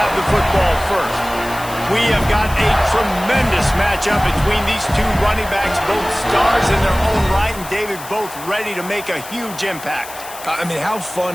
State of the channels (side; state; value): left; noise; hiss, 14 dB below the sound